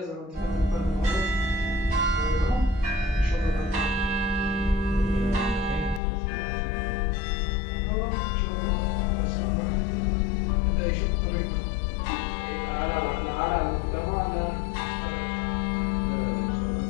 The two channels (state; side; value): drops out; right; at 6.0 s